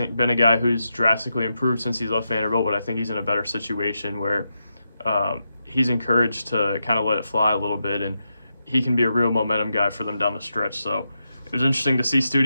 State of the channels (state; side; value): inverted; both; correlation -0.86